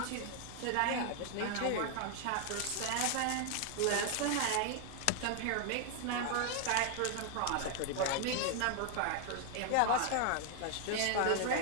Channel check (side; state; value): both; different; correlation 0.00